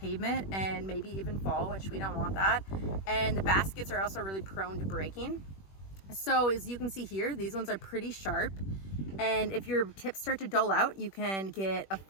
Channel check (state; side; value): late; right; 21 ms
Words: and maybe even fall, which we don't want that. And the baskets are also really prone to breaking. So as you can see here, these ones are pretty sharp. And if your tips start to dull out, you can get a